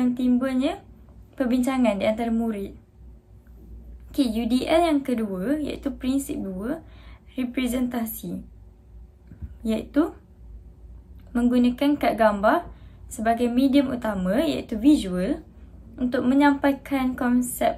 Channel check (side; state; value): both; identical; correlation 1.00